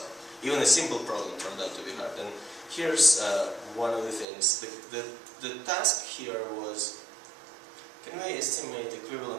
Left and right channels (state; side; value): drops out; left; at 4.2 s